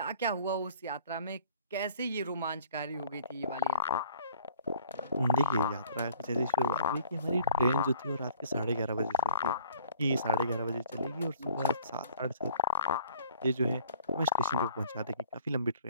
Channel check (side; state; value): both; inverted; correlation -0.53